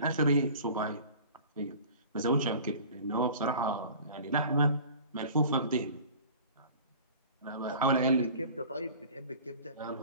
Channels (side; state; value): both; inverted; correlation -0.43